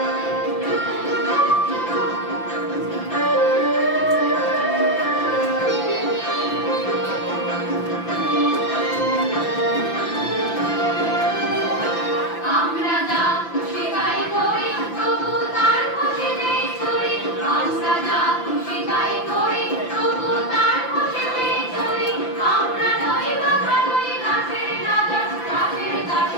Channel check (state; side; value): late; right; 5.9 ms